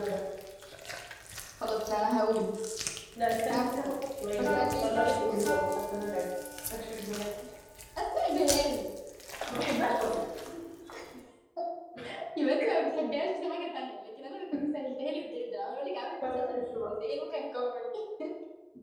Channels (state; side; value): identical; both; correlation 1.00